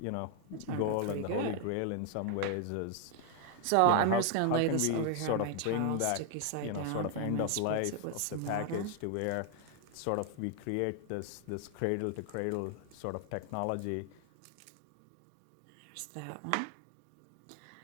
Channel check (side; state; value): both; different; correlation 0.00